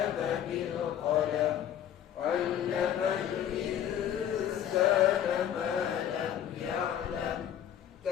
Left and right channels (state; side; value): quieter; right; 10.1 dB